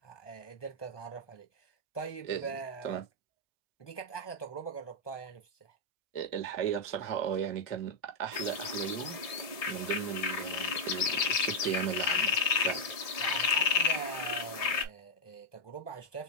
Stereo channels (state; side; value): late; right; 1.7 ms